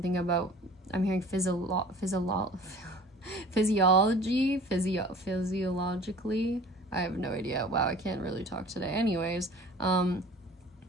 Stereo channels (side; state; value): both; normal; correlation 0.46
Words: about, I'm hearing physiologically. I have no idea. Wow, I can't really talk today. Anyways,